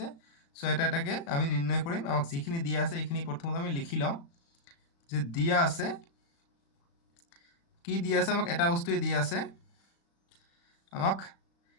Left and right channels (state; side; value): late; right; 35 ms